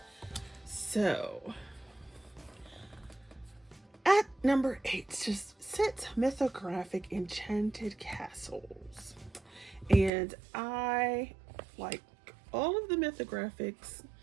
So, at number 8 just sits Mythographic Enchanted Castles. And I like all of the Mythographics.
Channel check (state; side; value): drops out; left; at 10.1 s